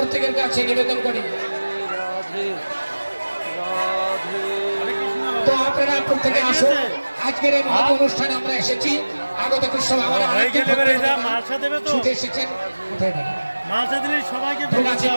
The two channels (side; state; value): both; inverted; correlation -1.00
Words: কাছে নিবেদন করি, তো আপনারা প্রত্যেকে আসুন। আজকের এই মহৎ অনুষ্ঠানে আমরা এসেছি। আগত কৃষ্ণ বাবার ছুটে এসেছেন। কোথায় দেবেন? ধোগাছির